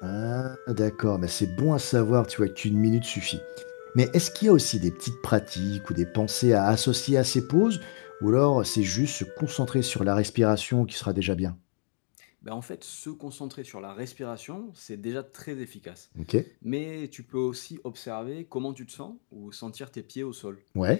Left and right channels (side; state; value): right; silent; digital silence